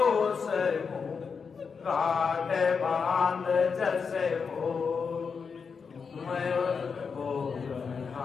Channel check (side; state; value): right; quieter; 5.7 dB